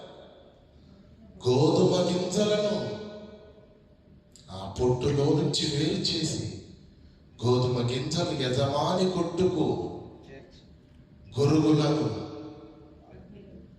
గోధుమ గింజలను ఆ పొట్టులో నుంచి వేరు చేసి గోధుమ గింజలు యజమాని కొట్టుకు, గురుగులను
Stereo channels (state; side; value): identical; both; correlation 1.00